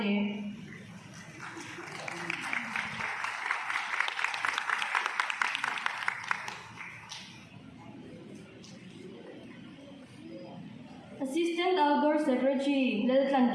Assistant Outdoor Secretary Leltan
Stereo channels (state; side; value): identical; both; correlation 1.00